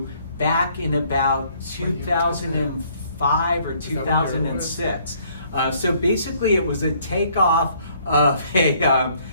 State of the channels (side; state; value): both; inverted; correlation -0.63